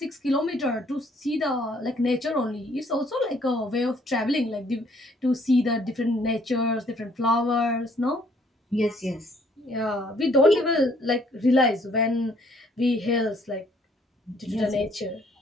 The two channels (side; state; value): both; normal; correlation 0.64